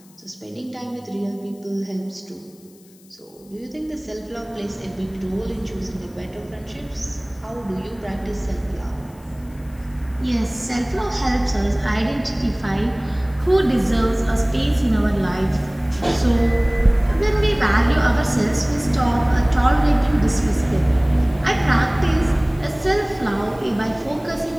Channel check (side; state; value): left; noise; hiss, 28 dB below the sound